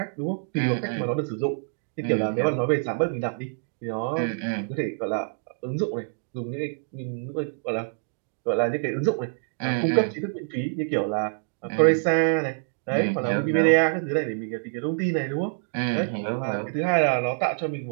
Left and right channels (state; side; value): silent; left; digital silence